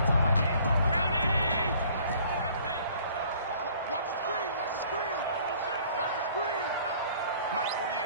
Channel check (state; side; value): inverted; both; correlation -0.55